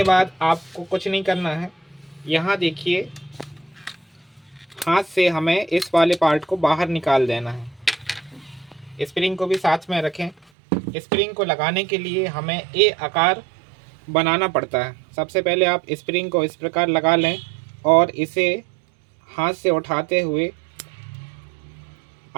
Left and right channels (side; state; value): left; drops out; at 10.4 s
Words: बाद आपको कुछ नहीं करना है। यहाँ देखिए हाथ से हमें इस वाले पार्ट को बाहर निकाल देना है। स्प्रिंग को भी साथ में रखें। स्प्रिंग को लगाने के लिए हमें ए आकार बनाना पड़ता है। सबसे पहले आप स्प्रिंग को इस प्रकार लगा लें और इसे हाथ से उठाते हुए